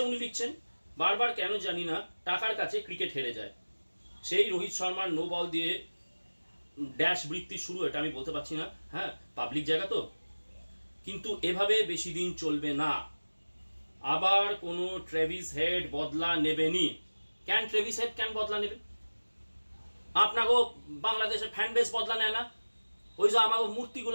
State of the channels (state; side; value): inverted; both; correlation -1.00